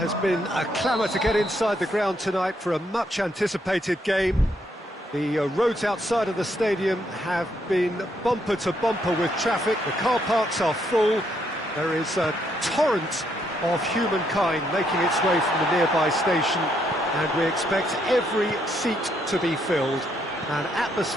been a clamour to get inside the ground tonight for a much-anticipated game. The roads outside of the stadium have been bumper to bumper with traffic. The car parks are full. There is a torrent of humankind making its way from the nearby station, and we expect every seat to be filled. An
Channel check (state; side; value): normal; both; correlation 0.74